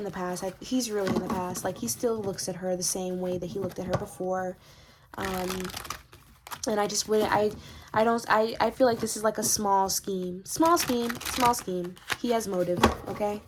the past. He's really in the past. Like, he still looks at her the same way that he looked at her before. And I just wouldn't, I feel like this is like a small scheme. He has motive, okay?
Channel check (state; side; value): identical; both; correlation 1.00